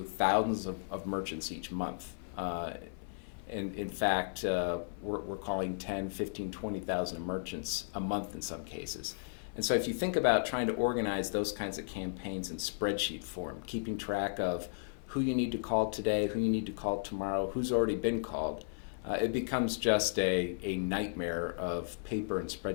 thousands of merchants each month. In fact, we're calling 10, 15, 20,000 merchants a month in some cases. And so if you think about trying to organize those kinds of campaigns in spreadsheet form, keeping track of who you need to call today, who you need to call tomorrow, who's already been called, it becomes just a nightmare of paper and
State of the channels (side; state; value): right; silent; 55 dB below the other